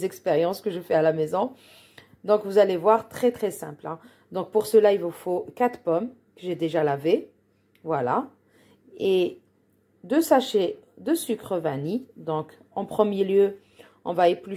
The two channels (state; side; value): identical; both; correlation 1.00